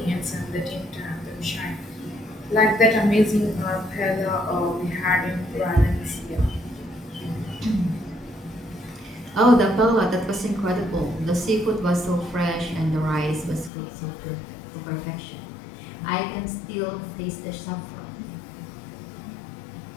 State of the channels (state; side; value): drops out; right; at 13.7 s